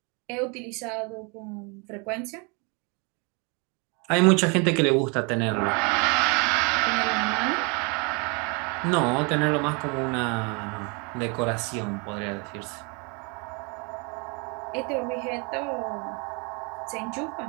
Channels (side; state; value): left; quieter; 32.1 dB